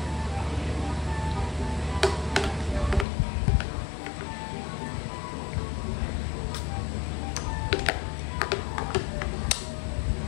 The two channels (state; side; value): drops out; right; at 3.1 s